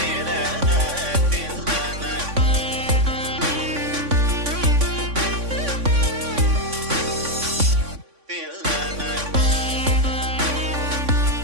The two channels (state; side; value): late; left; 3.5 ms